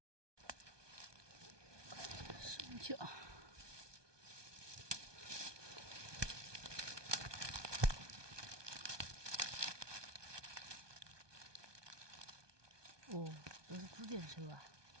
什么叫？哦，都是紫箭手啊！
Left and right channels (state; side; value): late; left; 1.2 ms